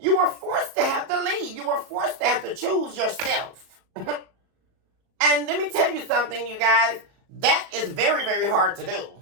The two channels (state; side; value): late; left; 37 ms